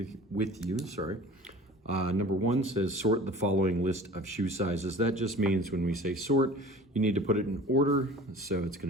with you. Number one says sort the following list of shoe sizes. That just means when we say sort, you need to put it in order. So it's going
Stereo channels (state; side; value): normal; both; correlation 0.43